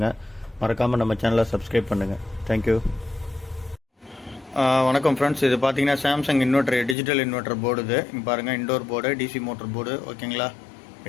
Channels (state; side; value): drops out; right; at 7.0 s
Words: மறக்காமல் நம்ம சேனலை சப்ஸ்கிரைப் பண்ணுங்கள். தேங்க்யூ. வணக்கம் ஃப்ரெண்ட்ஸ், இது பார்த்தீங்கன்னா Samsung inverter, digital inverter board. இது இங்கே பாருங்கள், indoor board, DC motor board. ஓகேங்களா?